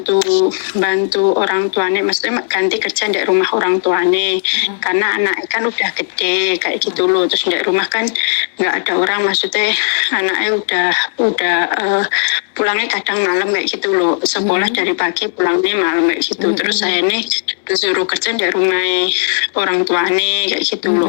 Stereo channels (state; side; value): silent; right; digital silence